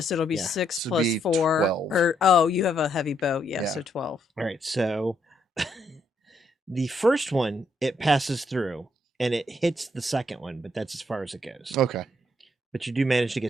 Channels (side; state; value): both; normal; correlation 0.74